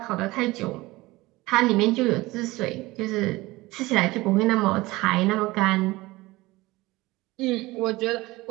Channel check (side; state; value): left; quieter; 20.1 dB